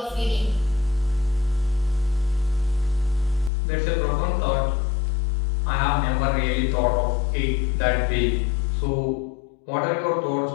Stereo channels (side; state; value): right; drops out; at 3.5 s